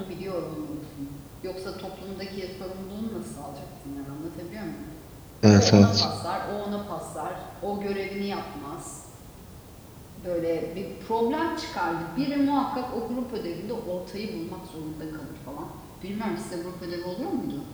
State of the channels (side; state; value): both; identical; correlation 1.00